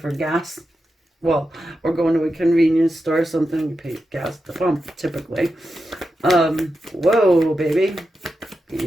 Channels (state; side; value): normal; both; correlation 0.89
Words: gas. Well, or going to a convenience store or something, you pay gas at the pump, typically. Whoa, baby.